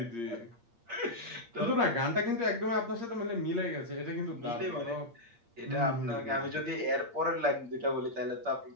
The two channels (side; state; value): left; late; 8.6 ms